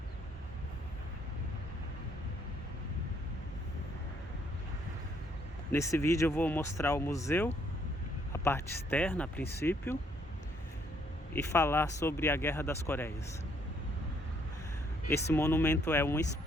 Nesse vídeo eu vou mostrar o museu, a parte externa a princípio, e falar sobre a Guerra das Coreias. Esse monumento é uma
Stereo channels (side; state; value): both; normal; correlation 0.68